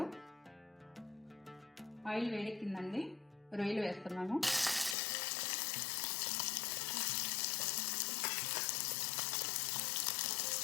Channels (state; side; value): drops out; right; at 5.0 s